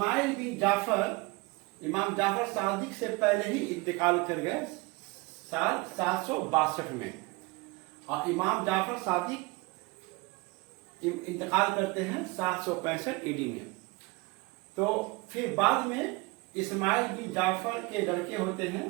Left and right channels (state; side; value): quieter; left; 24.7 dB